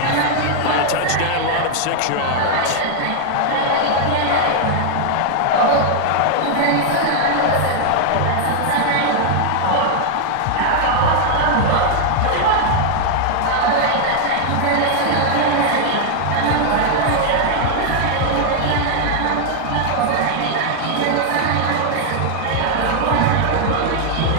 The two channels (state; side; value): different; both; correlation 0.00